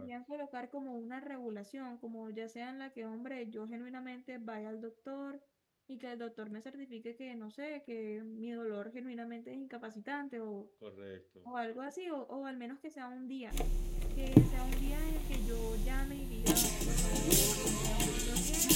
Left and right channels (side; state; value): both; identical; correlation 1.00